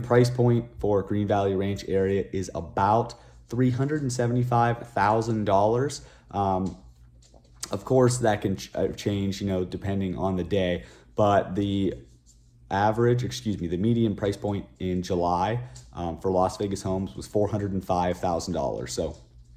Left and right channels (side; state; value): both; identical; correlation 1.00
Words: price point for Green Valley Ranch area is about $375,000. Of course, that can change, depending on the day. But the median price point in July for Las Vegas homes was $405,000. So